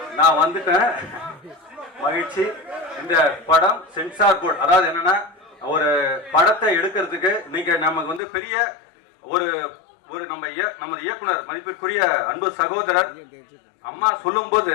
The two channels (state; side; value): drops out; right; at 8.2 s